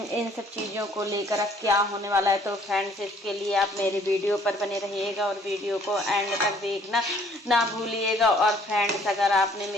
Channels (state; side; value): normal; both; correlation 0.60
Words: इन सब चीज़ों को लेकर अब क्या होने वाला है। तो फ्रेंड्स, इसके लिए आप मेरे वीडियो पर बने रहिएगा और वीडियो को एंड तक देखना ना भूलिएगा। और फ्रेंड्स, अगर आपने